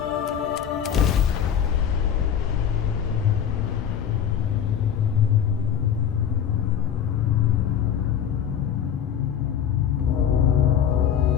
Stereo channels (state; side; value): quieter; right; 8.7 dB